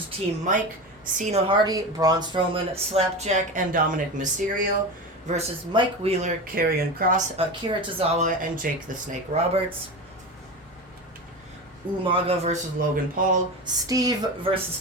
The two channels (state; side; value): normal; both; correlation 0.25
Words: Team Mike, Cena Hardy, Braun Strowman, Slapjack, and Dominic Mysterio versus Mike Wheeler, Karrion Kross, Akira Tozawa, and Jake the Snake Roberts. Umaga versus Logan Paul, Steve versus